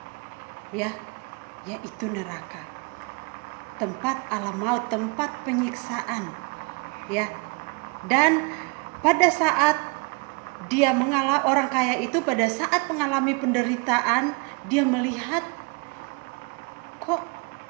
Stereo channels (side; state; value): left; quieter; 32.0 dB